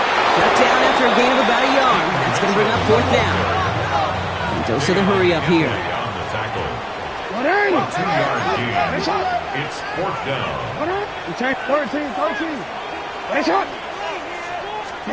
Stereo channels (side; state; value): both; identical; correlation 1.00